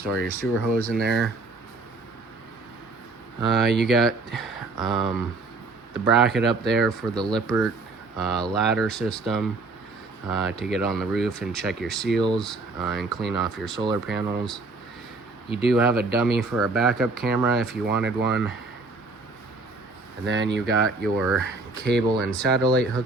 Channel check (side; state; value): left; quieter; 3.5 dB